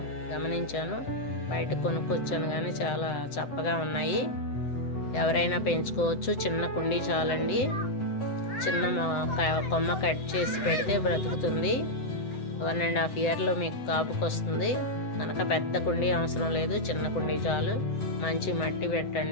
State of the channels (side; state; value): right; late; 7.9 ms